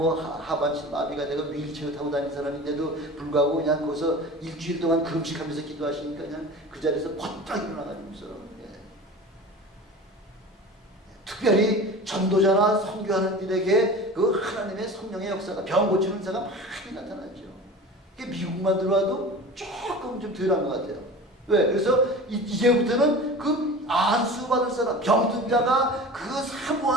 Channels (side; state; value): both; normal; correlation 0.36